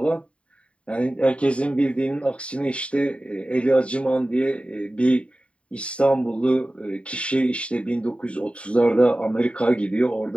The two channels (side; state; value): right; late; 0.061 ms